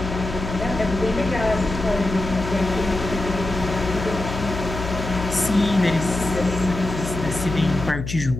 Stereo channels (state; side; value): noise; left; hum, 6 dB below the sound